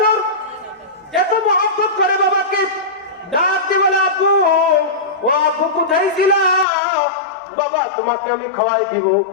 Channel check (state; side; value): drops out; right; at 6.7 s